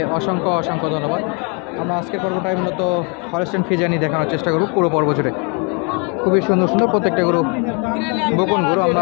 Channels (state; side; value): quieter; right; 34.7 dB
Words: অসংখ্য অসংখ্য ধন্যবাদ। আমরা আজকের পর্বটাই মূলত হলস্টাইন ফ্রিজিয়ানই দেখানোর চেষ্টা করব পুরো পর্ব জুড়ে। খুবই সুন্দর সুন্দর প্রত্যেকটা গরু বকন গরু।